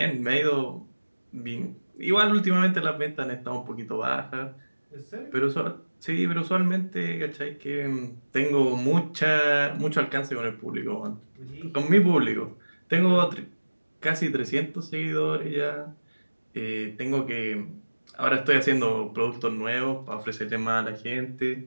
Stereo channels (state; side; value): inverted; both; correlation -1.00